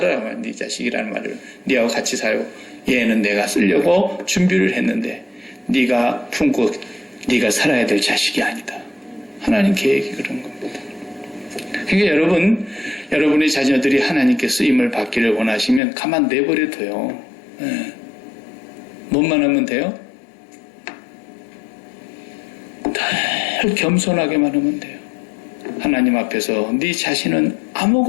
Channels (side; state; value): right; drops out; at 15.8 s